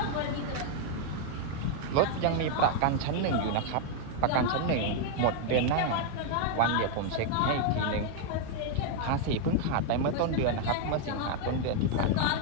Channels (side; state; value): both; different; correlation 0.00